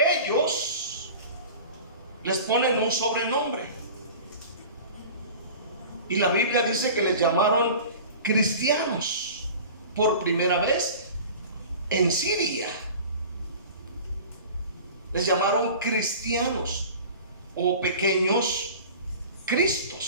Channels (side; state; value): both; inverted; correlation -0.39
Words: ellos, les ponen un sobrenombre. Y la Biblia dice que les llamaron cristianos por primera vez en Siria. Les llamaron cristianos o pequeños